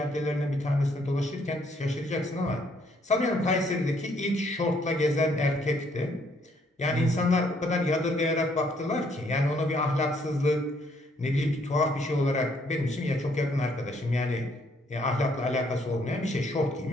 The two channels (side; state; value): both; normal; correlation 0.68